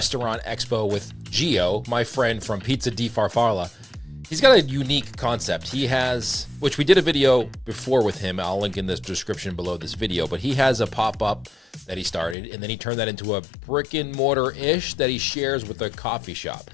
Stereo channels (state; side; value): drops out; right; at 12.4 s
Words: Expo with Gio, my friend from Pizza di Farfalla. He's got a unique concept. He has, which we did a video before with him. I'll link in the description below this video, but he has a pop-up that he started, and then he turned that into a brick and mortar-ish that he shares with a coffee shop.